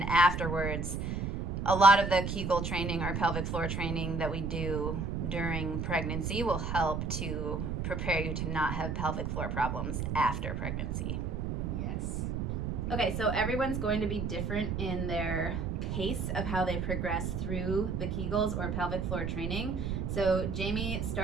afterwards, a lot of the Kegel training or pelvic floor training that we do during pregnancy will help to prepare you to not have pelvic floor problems after pregnancy. Yes. Okay, so everyone's going to be different in their pace of how they progress through the Kegels or pelvic floor training. So Jamie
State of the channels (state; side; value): noise; right; rumble, 2 dB below the sound